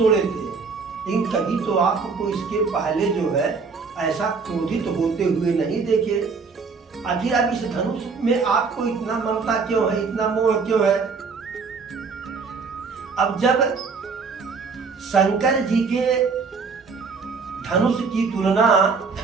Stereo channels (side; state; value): left; quieter; 4.9 dB